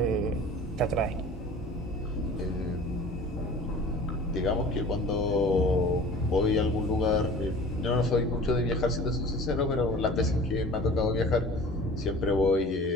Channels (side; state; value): both; normal; correlation 0.43